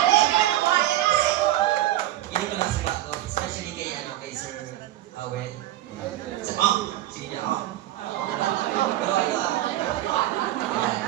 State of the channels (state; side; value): quieter; left; 14.5 dB